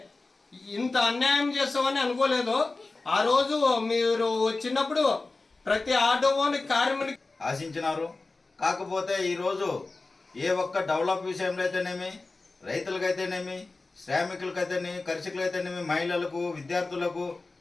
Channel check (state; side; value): quieter; right; 3.5 dB